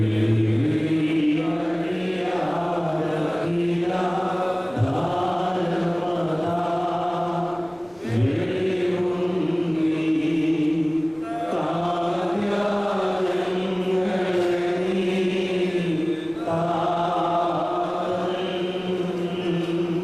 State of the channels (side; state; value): right; noise; rumble, 29 dB below the sound